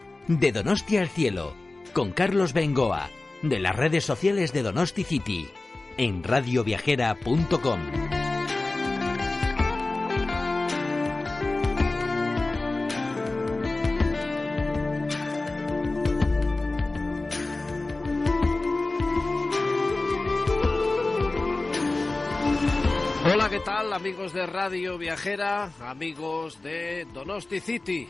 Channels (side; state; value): right; quieter; 3.1 dB